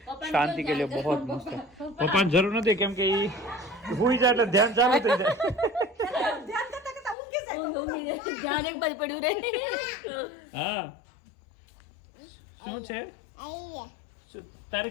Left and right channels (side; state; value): right; drops out; at 7.2 s